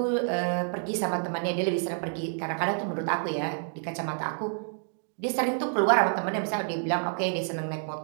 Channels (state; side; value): silent; left; 58 dB below the other